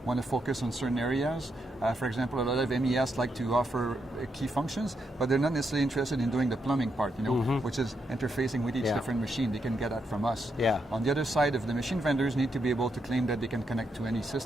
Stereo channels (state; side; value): normal; both; correlation 0.81